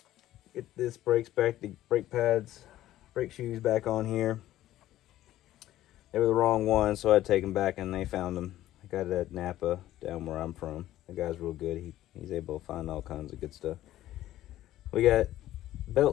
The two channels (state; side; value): quieter; right; 14.1 dB